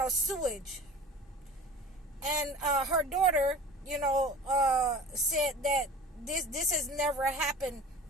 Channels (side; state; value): both; normal; correlation 0.39